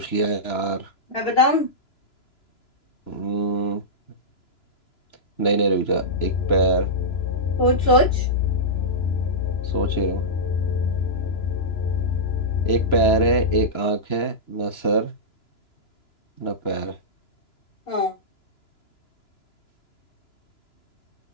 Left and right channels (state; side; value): late; right; 2.9 ms